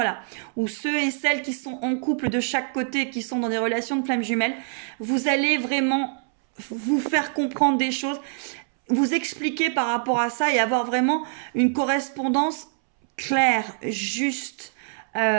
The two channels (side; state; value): left; silent; 62 dB below the other